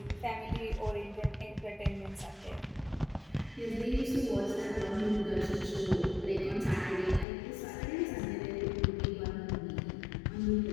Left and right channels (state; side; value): drops out; right; at 7.2 s